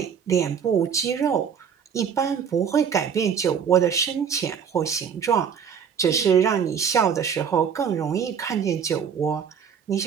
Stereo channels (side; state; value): left; quieter; 7.3 dB